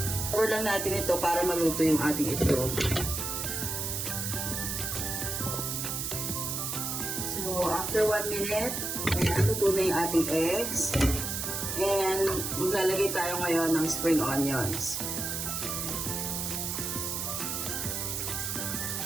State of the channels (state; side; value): noise; right; hiss, 2 dB below the sound